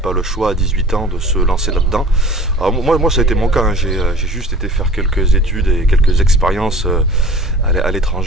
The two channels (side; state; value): both; normal; correlation 0.45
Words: le choix à 18 ans de se lancer là-dedans. Alors moi ça a été mon cas, hein. J'ai juste été faire quelques études et quelques expériences à